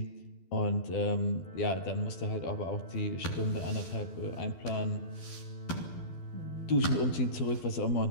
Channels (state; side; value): late; right; 12 ms